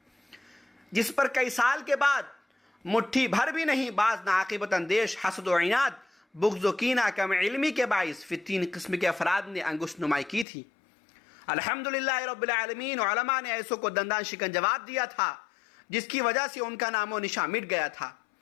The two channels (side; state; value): right; drops out; at 10.5 s